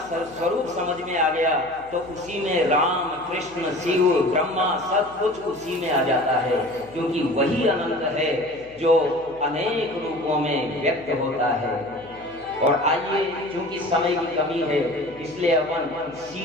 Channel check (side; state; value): left; noise; hum, 25 dB below the sound